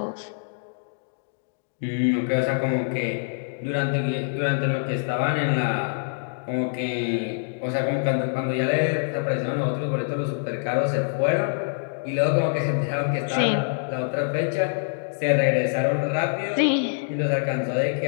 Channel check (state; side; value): silent; right; digital silence